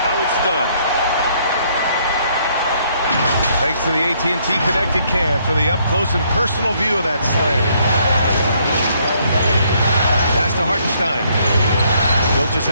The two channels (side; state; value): both; inverted; correlation -0.68